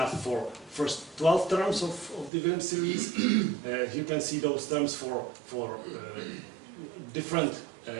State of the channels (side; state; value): left; drops out; at 2.3 s